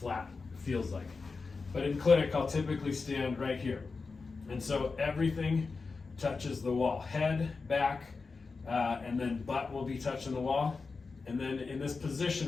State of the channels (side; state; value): right; quieter; 4.4 dB